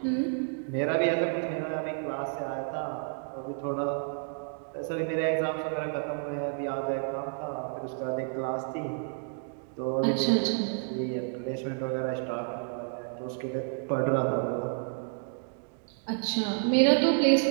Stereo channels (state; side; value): silent; left; 58 dB below the other